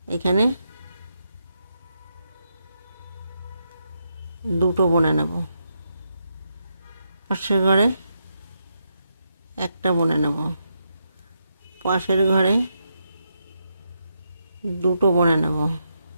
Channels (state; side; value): inverted; both; correlation -0.82